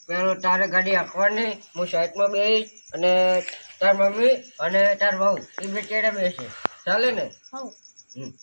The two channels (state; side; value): inverted; both; correlation -1.00